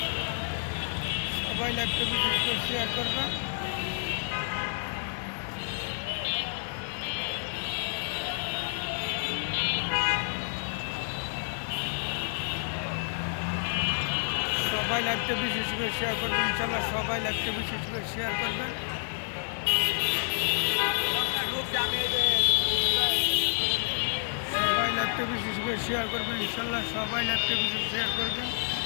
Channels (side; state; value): right; silent; digital silence